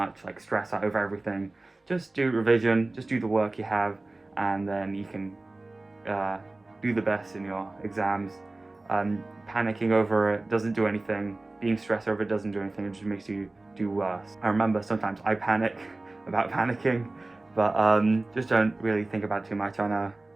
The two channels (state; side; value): quieter; left; 3.0 dB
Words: like stress out over everything. Just do revision. Just do the work you have, and then you can do the best in your exams. Panicking over it doesn't do anything. Being stressed over it doesn't do anything. It just makes you do worse. I remember sometimes I panic about panicking, but just don't really think about it too much. I know